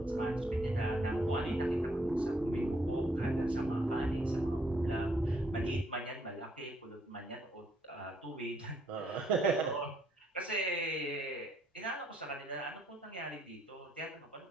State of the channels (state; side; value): normal; both; correlation 0.71